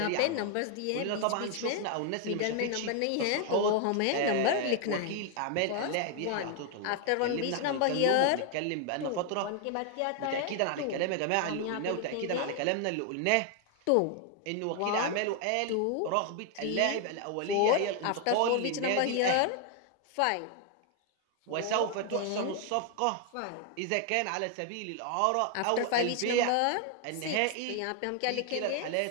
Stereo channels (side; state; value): both; different; correlation 0.00